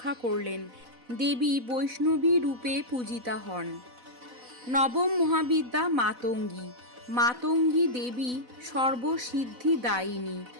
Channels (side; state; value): left; late; 4.0 ms